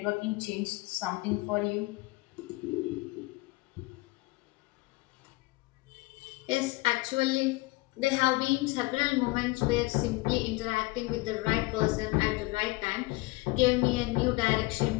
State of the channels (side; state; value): right; quieter; 22.9 dB